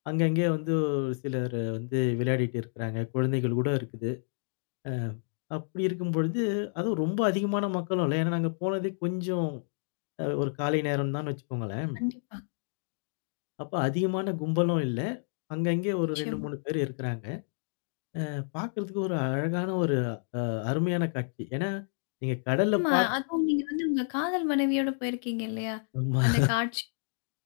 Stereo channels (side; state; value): right; silent; digital silence